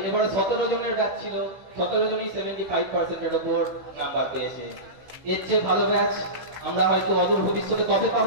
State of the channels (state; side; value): late; left; 16 ms